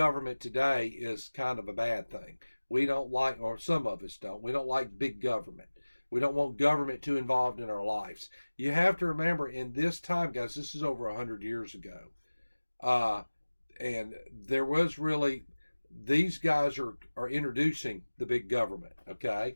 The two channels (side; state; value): both; inverted; correlation -1.00